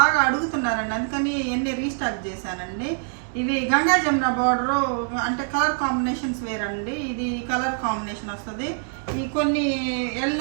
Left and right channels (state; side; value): silent; left; digital silence